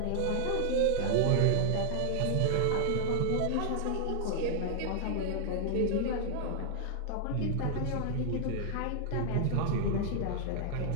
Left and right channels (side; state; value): both; different; correlation -0.01